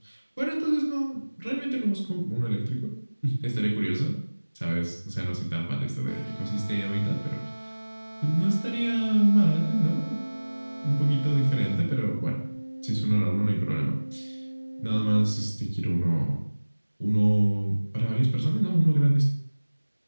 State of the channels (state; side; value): inverted; both; correlation -1.00